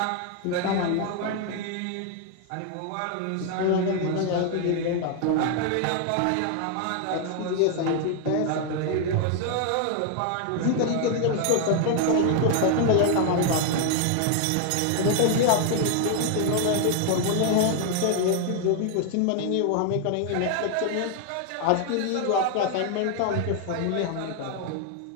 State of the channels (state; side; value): different; both; correlation 0.00